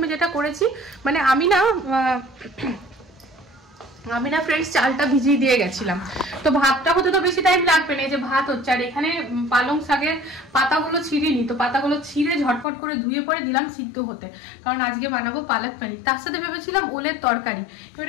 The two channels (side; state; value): right; drops out; at 12.7 s